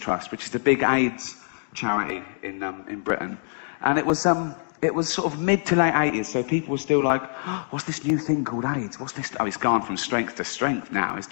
which is the big AIDS charity in Britain. And it was sort of mid to late 80s, so people were still like, oh, what's this new thing called AIDS? What's this? Oh, it's gone from strength to strength now. It's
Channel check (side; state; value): right; silent; digital silence